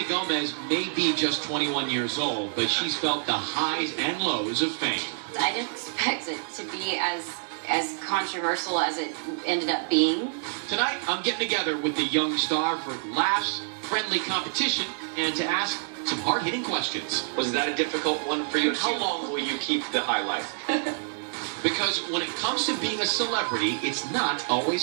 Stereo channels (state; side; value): silent; left; 60 dB below the other